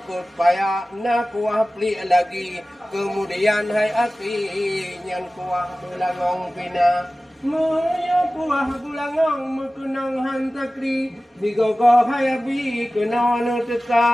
payah na kuah pli lagi. Kemudian hai akhi nyan kuah belagong pina. Moyo kuah bulangong mekunang hantakri. Digogo hayabi kenano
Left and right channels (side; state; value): both; normal; correlation 0.97